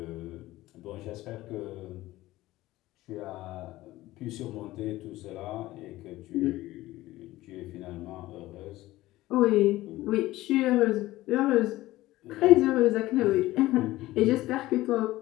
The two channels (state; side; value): quieter; right; 17.1 dB